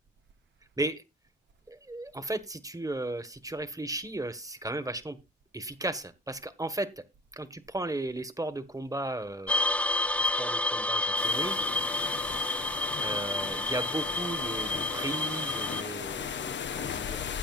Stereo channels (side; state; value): both; normal; correlation 0.41